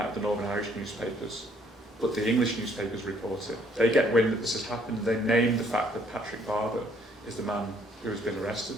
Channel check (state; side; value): normal; both; correlation 0.64